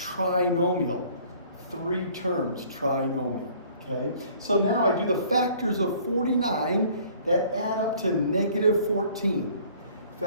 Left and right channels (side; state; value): both; inverted; correlation -0.54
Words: 3 terms, trinomial. Okay, so now I do the factors of 49 that add up to negative 14.